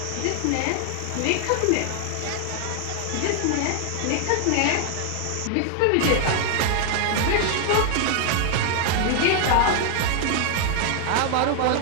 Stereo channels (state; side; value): different; both; correlation 0.00